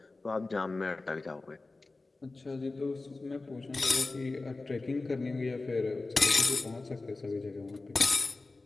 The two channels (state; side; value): quieter; right; 3.4 dB